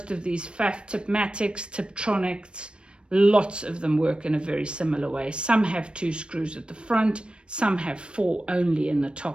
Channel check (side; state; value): left; late; 0.056 ms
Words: of these Pfaff Tipmatics, Tiptronics. Lots of them work in a very similar way. Some have 2 screws at the front, some have 4 only in the